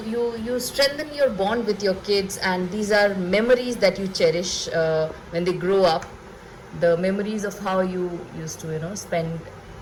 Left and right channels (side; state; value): both; identical; correlation 1.00